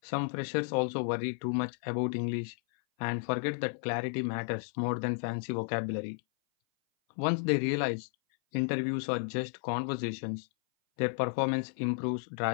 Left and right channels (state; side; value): silent; right; 56 dB below the other